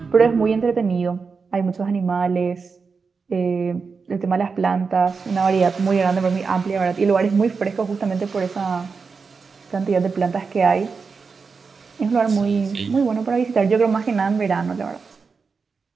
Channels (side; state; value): left; quieter; 5.0 dB